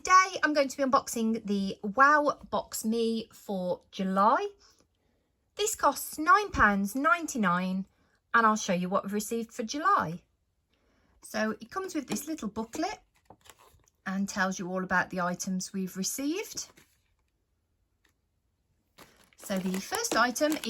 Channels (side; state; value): both; identical; correlation 1.00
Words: I'm going to be unboxing the WowBoxMe for July. This costs £9.99 and I'll show you what we've received for July. So it comes with this little booklet and tells you all about the items we've received. So the first item